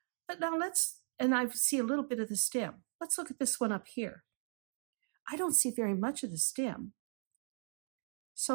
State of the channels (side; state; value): left; silent; 53 dB below the other